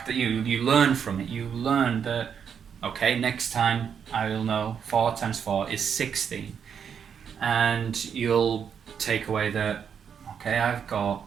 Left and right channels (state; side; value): quieter; left; 7.5 dB